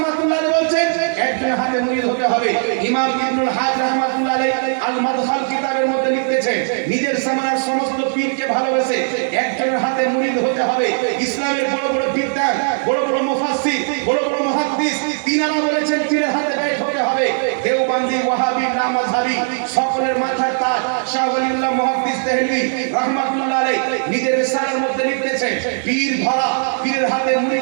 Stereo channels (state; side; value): silent; left; 55 dB below the other